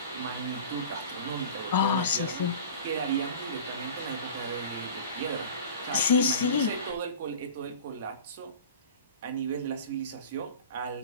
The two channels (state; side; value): inverted; both; correlation -0.38